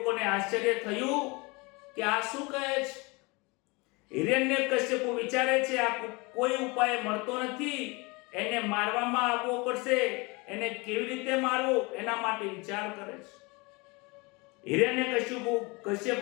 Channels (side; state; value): right; quieter; 26.7 dB